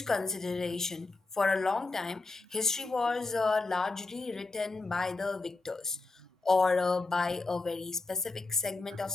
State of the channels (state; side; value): quieter; right; 3.5 dB